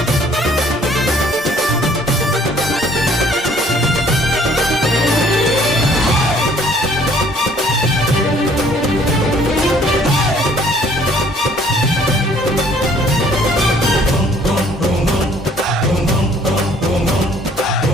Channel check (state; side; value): normal; both; correlation 0.59